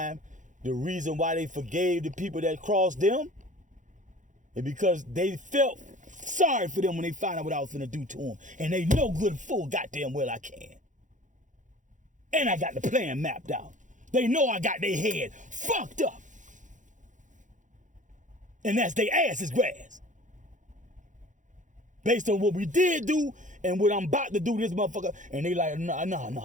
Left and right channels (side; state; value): left; late; 0.36 ms